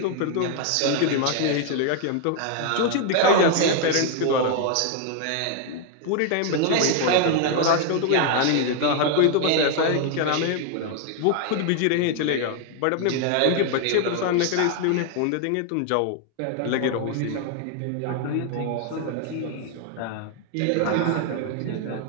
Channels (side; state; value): both; different; correlation 0.00